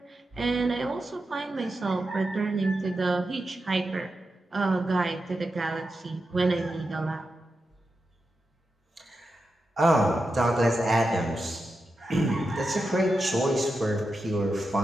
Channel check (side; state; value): both; normal; correlation 0.89